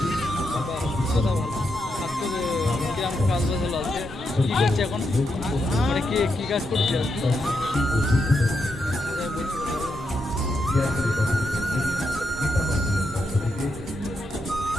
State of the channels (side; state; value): both; normal; correlation 0.83